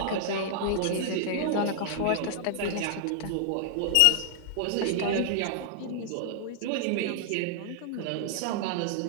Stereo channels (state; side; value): different; both; correlation 0.00